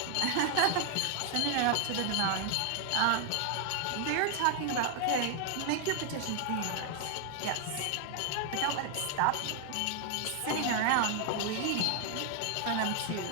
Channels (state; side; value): different; both; correlation 0.00